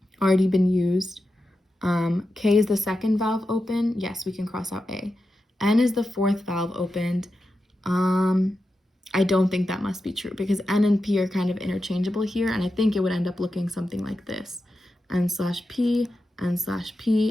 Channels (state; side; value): normal; both; correlation 0.90